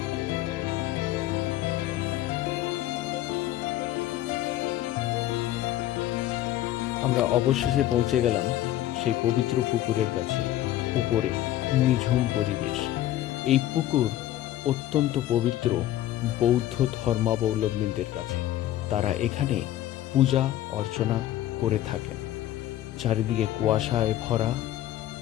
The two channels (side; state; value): right; quieter; 13.6 dB